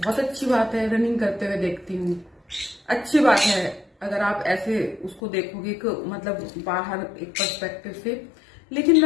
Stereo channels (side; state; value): right; drops out; at 5.2 s